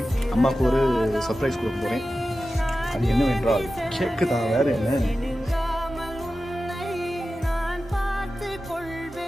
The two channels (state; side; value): normal; both; correlation 0.94